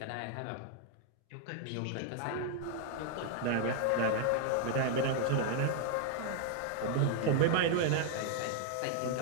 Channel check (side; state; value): both; different; correlation 0.00